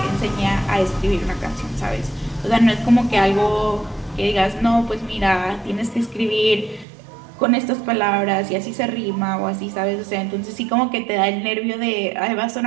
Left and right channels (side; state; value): left; drops out; at 6.9 s